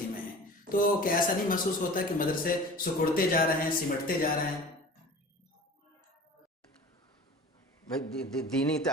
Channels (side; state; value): both; normal; correlation 0.40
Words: ہیں۔ تو کیا ایسا نہیں محسوس ہوتا کہ مدرسے سکڑتے جا رہے ہیں، سمٹتے جا رہے ہیں؟ دینی